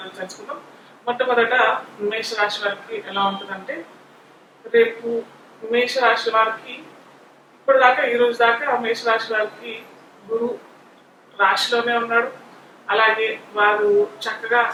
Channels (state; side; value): identical; both; correlation 1.00